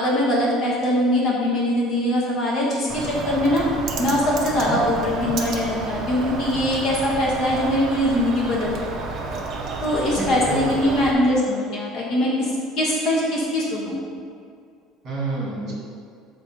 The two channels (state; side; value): normal; both; correlation 0.51